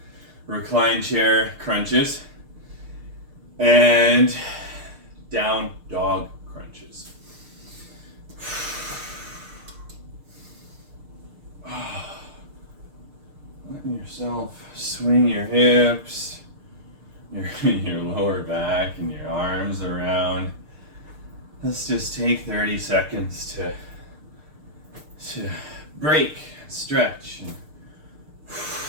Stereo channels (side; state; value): left; late; 6.6 ms